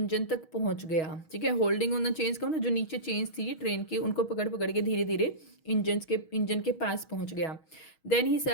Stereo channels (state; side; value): late; right; 6.3 ms